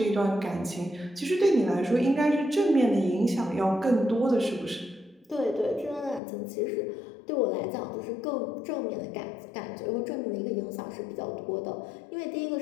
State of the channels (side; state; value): right; drops out; at 6.2 s